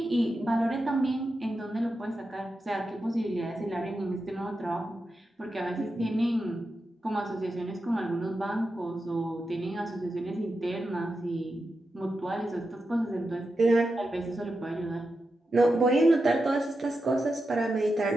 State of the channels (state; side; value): normal; both; correlation 0.89